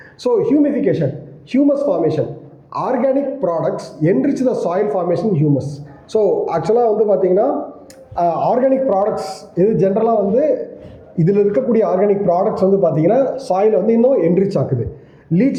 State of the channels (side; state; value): both; identical; correlation 1.00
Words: So humification, humus formation, organic products enrich the soil formation humus. So ஆக்சுவலாக வந்து பார்த்தீங்கன்னா ஆர்கானிக் ப்ராடக்ட்ஸ் இது ஜென்ரலாக வந்து இதில் இருக்கக்கூடிய ஆர்கானிக் ப்ராடக்ட்ஸ் வந்து பார்த்தீங்கன்னா சாயில் வந்து இன்னும் என்ரிச் ஆக்குது.